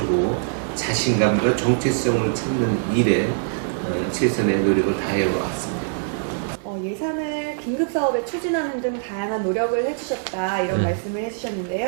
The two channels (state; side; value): silent; left; digital silence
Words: 자신감과 정체성을 찾는 일에 최선의 노력을 다해 왔습니다. 예산을 긴급 사업에 추진하는 등 다양한 노력을 해주셨다 이런 말씀을